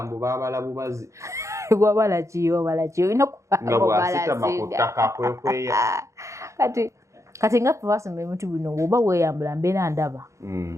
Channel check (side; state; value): left; late; 0.15 ms